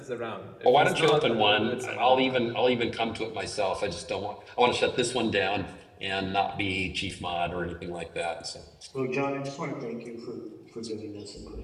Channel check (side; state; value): both; identical; correlation 1.00